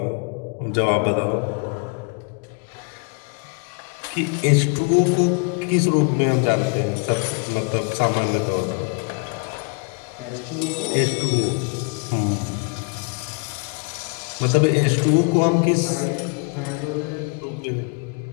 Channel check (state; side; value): quieter; right; 33.8 dB